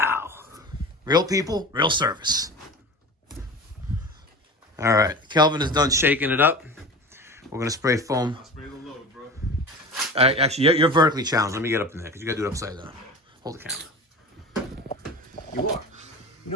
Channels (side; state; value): both; normal; correlation 0.33